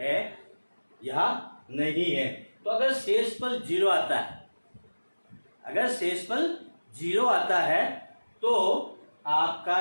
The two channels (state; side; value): inverted; both; correlation -1.00